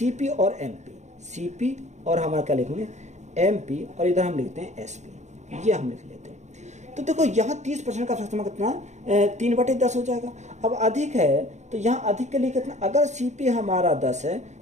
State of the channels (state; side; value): late; left; 0.34 ms